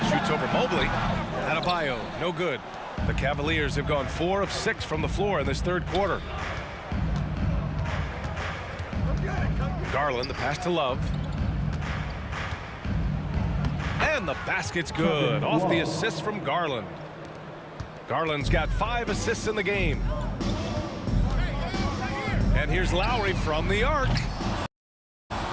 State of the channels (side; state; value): both; identical; correlation 1.00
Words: Shoots over Mobley. Adebayo, no good. The Cavaliers have gone 4 of 6 from the floor in this third quarter. Garland, the pass to Love. And the basket's good. Off the assist from Garland. Garland's got 5 assists in the game. And here's Lowry from the arc.